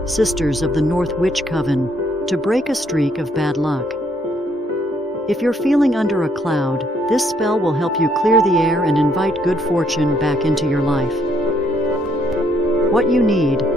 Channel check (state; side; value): normal; both; correlation 0.69